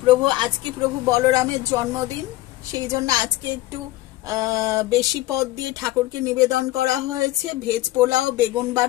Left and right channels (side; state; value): right; quieter; 17.0 dB